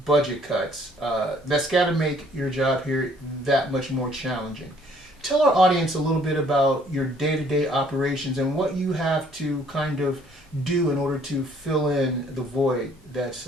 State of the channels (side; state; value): both; normal; correlation 0.61